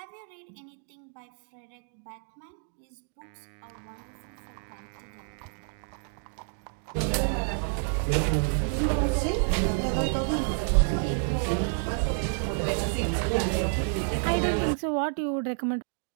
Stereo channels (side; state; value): left; silent; digital silence